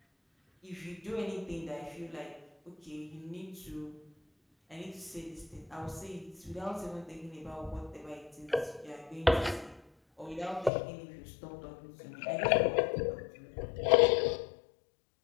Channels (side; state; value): right; drops out; at 10.7 s